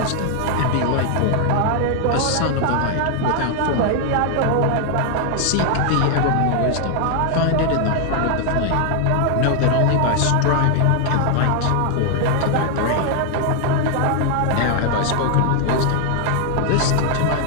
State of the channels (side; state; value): both; different; correlation 0.00